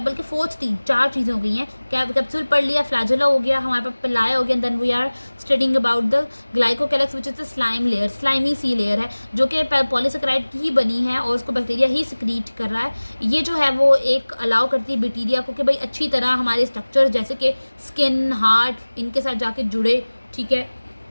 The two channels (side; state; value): both; inverted; correlation -1.00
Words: बल्कि फोर्थ 4 चीज़ें हो गई हैं। कैप्सूल पढ़ लिया, फ्लैजेला हो गया, हमारे पास पिलाई हो गया, then we are studying about the glycocalyx which is the slime layer, slimy सी लेयर है जो कि पॉलीसेकेराइड की ही बनी है और उसको बैक्टीरिया ही सिक्रीट कर रहा है। ये जो है वो एक अलाउ करती है बैक्टीरिया को कि भाई अच्छी तरह हमारे स्ट्रक्चर जैसे कि स्किन, हार्ट, इनके साथ जाके जुड़े, ठीक है।